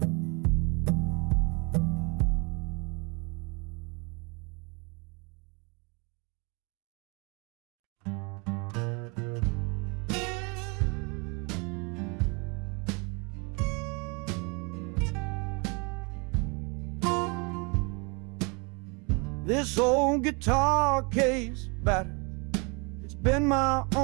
This old guitar case battered, it's been my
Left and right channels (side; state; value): left; quieter; 31.2 dB